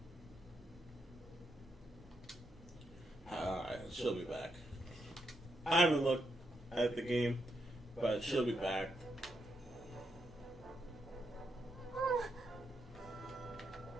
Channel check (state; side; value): normal; both; correlation 0.81